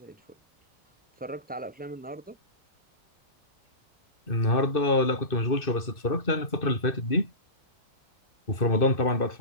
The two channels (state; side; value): late; right; 2.6 ms